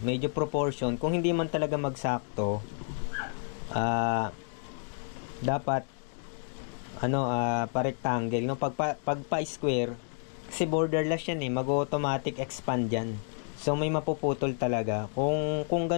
medyo proportion. Kung hindi man talaga magsakto, dapat pa-rectangle, no? Pag pa-square, kasi borderless yan eh, mag-automatic expand yan. So may mapuputol talaga. Kung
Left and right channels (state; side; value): silent; right; 58 dB below the other